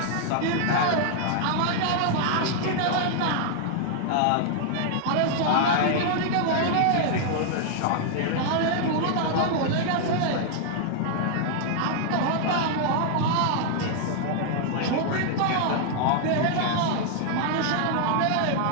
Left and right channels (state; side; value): different; both; correlation 0.00